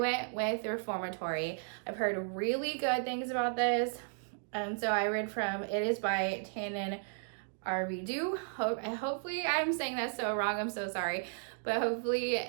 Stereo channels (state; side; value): silent; left; digital silence